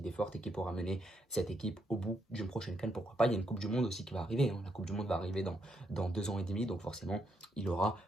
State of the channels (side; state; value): both; normal; correlation 0.77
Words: fortes et qui pourra mener cette équipe au bout d'une prochaine CAN, pourquoi pas. Il y a une Coupe du Monde aussi qui va arriver, hein. La Coupe du Monde va arriver dans 2 ans et demi, donc forcément, il aura